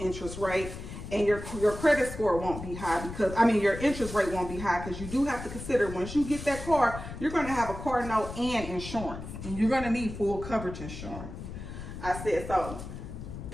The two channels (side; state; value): left; noise; rumble, 10 dB below the sound